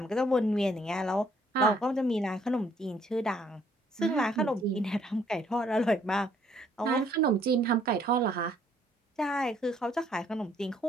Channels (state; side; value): normal; both; correlation 0.66